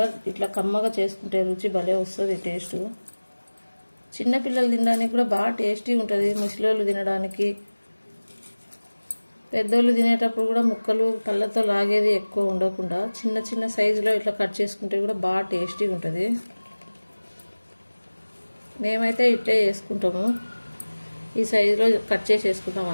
ఇట్లా కమ్మగా చేసుకుంటే రుచి భలే వస్తుంది. టేస్ట్ చిన్నపిల్లలు తినడానికి కూడా బాగా టేస్టీగా ఉంటుంది. ముసలోళ్ళు తినడానికి, పెద్దోళ్ళు తినేటప్పుడు కూడా ముక్కలు పళ్ళతో లాగేది ఎక్కువ ఉండకుండా చిన్న చిన్న సైజులో ఇట్లా కట్ చేసుకుంటే కూడా బాగా టేస్టీగా ఉంటుంది. మేమైతే ఇట్లే చేసుకుంటాము. ఈ సైజులో కట్ చేసేసుకుందాం.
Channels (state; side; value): inverted; both; correlation -1.00